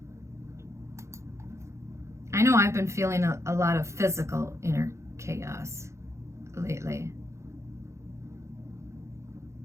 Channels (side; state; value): left; late; 0.14 ms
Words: I know I've been feeling a lot of physical inner chaos lately.